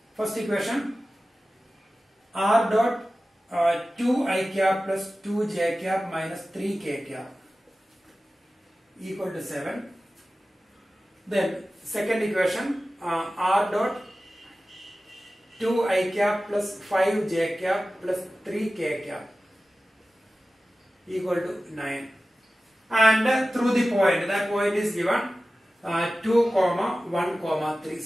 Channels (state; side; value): normal; both; correlation 0.95